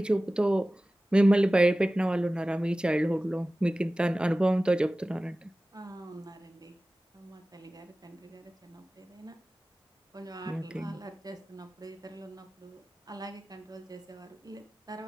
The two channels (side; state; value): both; normal; correlation 0.97